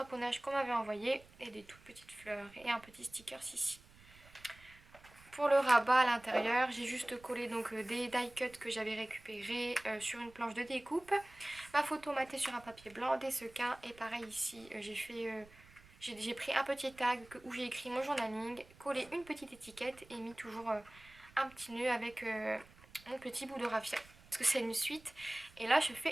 qu'on m'avait envoyé et des toutes petites fleurs et un petit sticker ici. Pour le rabat à l'intérieur, j'ai juste collé donc des die cuts que j'avais récupérés sur une planche de découpe. Ma photo matée sur un papier blanc, des sequins et pareil ici j'ai pris un petit tag où j'ai écrit mon journaling, collé une petite étiquette et mis toujours un petit nœud avec mon petit bout de raffia. Parce que c'est une suite. Et là je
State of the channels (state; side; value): noise; right; rumble, 24 dB below the sound